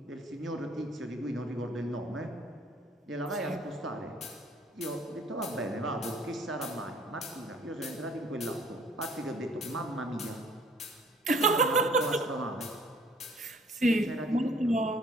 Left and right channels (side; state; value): both; normal; correlation 0.57